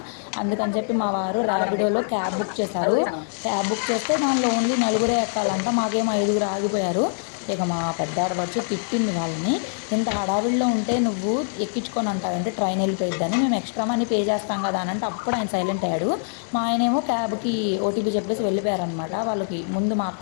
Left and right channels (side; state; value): right; silent; digital silence